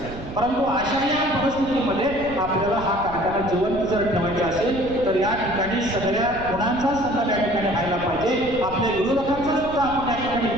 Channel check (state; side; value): noise; right; rumble, 12 dB below the sound